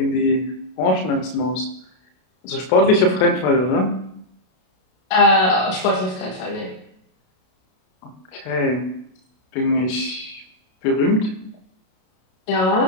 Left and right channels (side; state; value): right; late; 32 ms